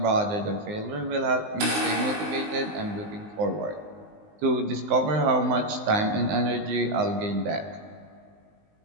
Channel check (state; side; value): late; left; 19 ms